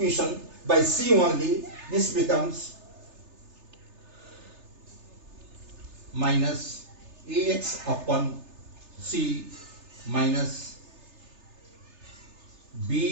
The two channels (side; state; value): left; late; 3.3 ms